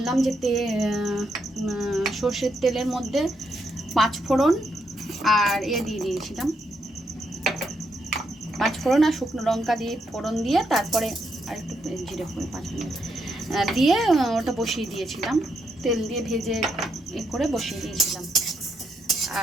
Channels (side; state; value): both; normal; correlation 0.79